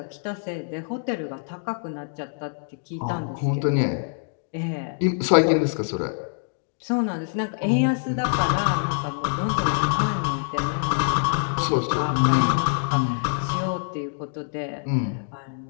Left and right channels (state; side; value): silent; right; digital silence